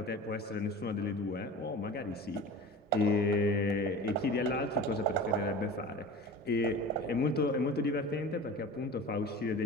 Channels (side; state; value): both; normal; correlation 0.35